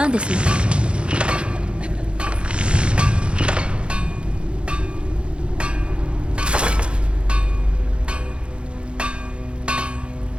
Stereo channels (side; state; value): left; late; 0.056 ms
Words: んですの？